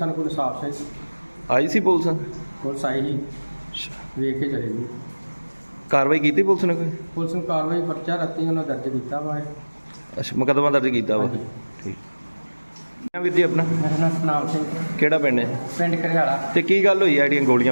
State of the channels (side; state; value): both; inverted; correlation -1.00